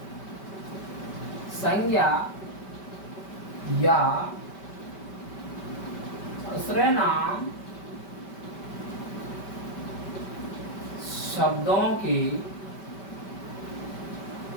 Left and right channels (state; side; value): late; right; 5.2 ms